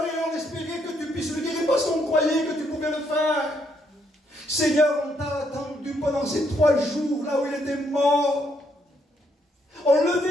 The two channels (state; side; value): normal; both; correlation 0.73